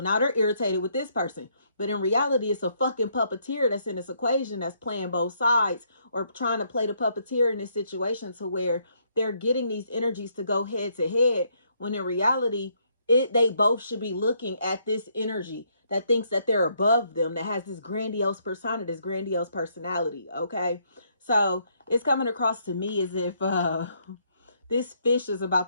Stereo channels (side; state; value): both; inverted; correlation -0.71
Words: they're irritated with this person. But in reality, it's a fucking puppeteer that's in this equation that's playing both sides, or trying to play the puppeteer in this situation to where they're getting these energies to go head to head, when in reality, they both should be looking at this energy that thinks that they're above them, that has this grandiose persona, this grandiose personality. Okay, so it's coming across to me as if this fish is about